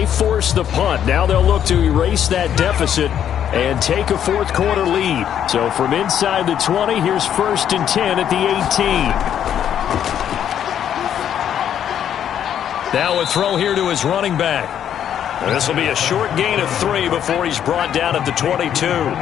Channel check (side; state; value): right; quieter; 9.6 dB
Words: forced the punt. Now they'll look to erase that deficit and take a fourth quarter lead. So from inside the 20, here's 1st and 10 at the 18. Now a throw here to his running back. This will be a short gain of 3 before he's brought down at the 22.